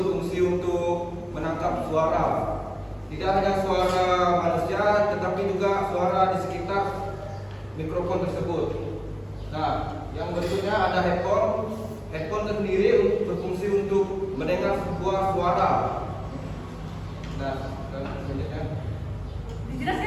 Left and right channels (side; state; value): both; identical; correlation 1.00